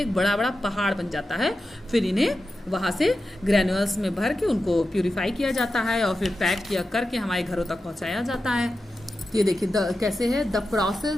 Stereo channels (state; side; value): normal; both; correlation 0.91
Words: एक बड़ा बड़ा पहाड़ बन जाता है। फिर इन्हें वहाँ से ग्रैन्युअल्स में भर के उनको प्यूरिफाई किया जाता है और फिर पैक किया करके हमारे घरों तक पहुँचाया जाता है। ये देखिए कैसे है द